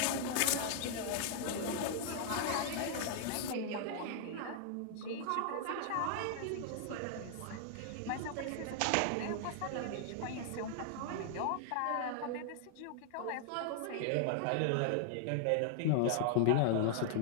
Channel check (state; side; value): different; both; correlation -0.01